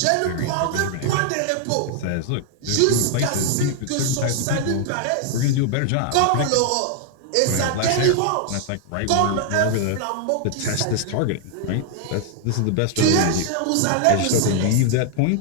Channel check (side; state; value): both; different; correlation 0.00